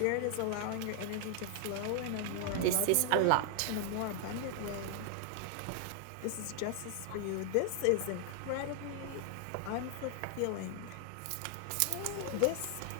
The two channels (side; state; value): both; different; correlation 0.00